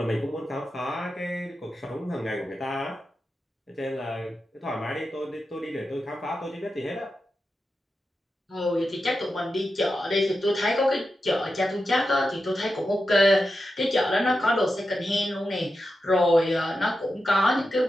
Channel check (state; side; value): normal; both; correlation 0.90